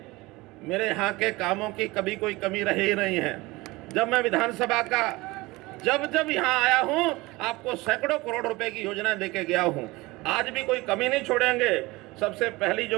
मेरे यहाँ के कामों की कभी कोई कमी रही ही नहीं है। जब मैं विधानसभा का जब यहाँ आया हूँ, आपको सैकड़ों करोड़ रुपए की योजना देके गया हूँ। आज भी कोई कमी नहीं छोड़ेंगे। सबसे पहली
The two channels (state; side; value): quieter; left; 21.6 dB